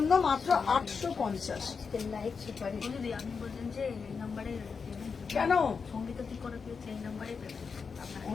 মাত্র 850। আজকের লাইভ সুপার হিট। দিদি আপনি বলছেন যে এই নাম্বারে কেন সঙ্গীতা কি করে পেয়েছে, এই নাম্বারে পেমেন্ট আপনার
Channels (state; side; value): quieter; right; 5.5 dB